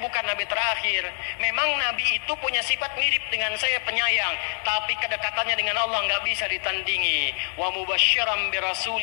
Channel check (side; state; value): right; silent; digital silence